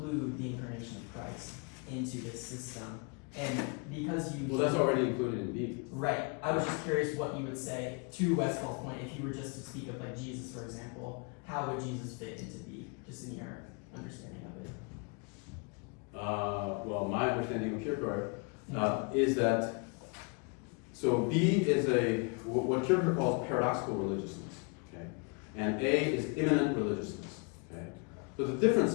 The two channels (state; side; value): quieter; right; 34.4 dB